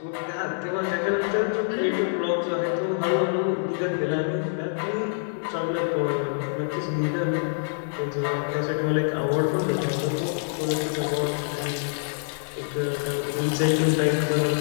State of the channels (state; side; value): silent; right; 61 dB below the other